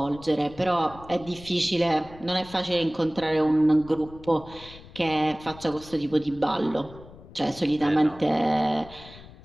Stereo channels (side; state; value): left; noise; rumble, 19 dB below the sound